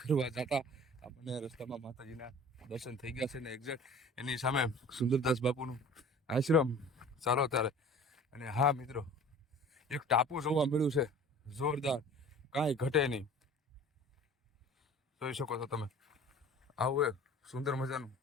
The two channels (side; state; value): both; normal; correlation 0.44